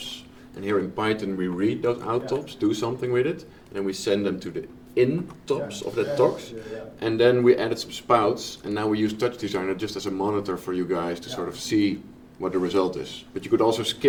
And here in Python we read those outtops, do something with it, and then we send them to the intops of that talks. And then we added some spouts, and now we use Touch Designer just as a monitor for you guys to sort of see what the result is. But you could also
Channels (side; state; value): both; identical; correlation 1.00